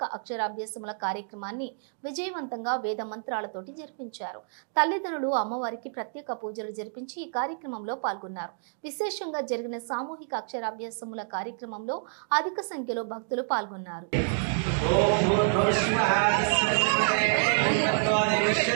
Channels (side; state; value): left; silent; digital silence